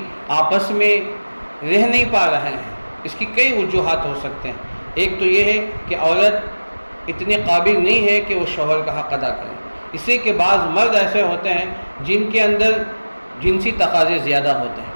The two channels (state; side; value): inverted; both; correlation -1.00